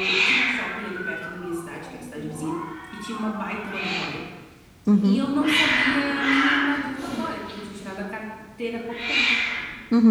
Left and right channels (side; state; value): both; identical; correlation 1.00